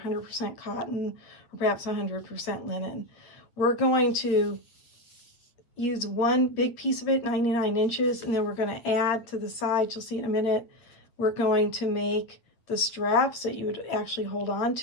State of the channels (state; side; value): late; right; 8.8 ms